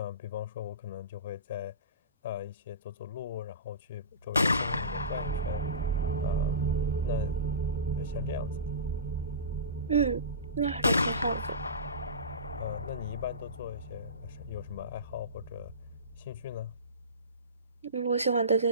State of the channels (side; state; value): both; inverted; correlation -0.31